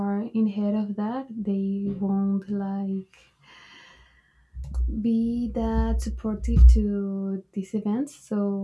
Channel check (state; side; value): identical; both; correlation 1.00